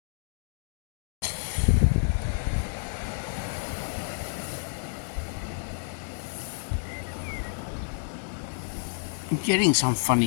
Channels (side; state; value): right; silent; digital silence